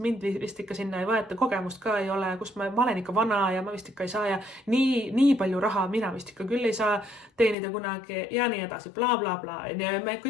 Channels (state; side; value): drops out; right; at 7.6 s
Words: vist ikka sinna ei võeta, kogemust ka ei ole, kus ma olen ikka vana ja ma vist ikka ei saa ja nii palju raha mina vist ikka küll ei saa teenida kunagi ja nii edasi, bla, bla, bla. Ja me